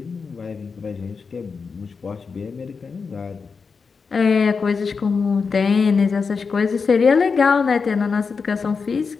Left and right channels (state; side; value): quieter; right; 5.2 dB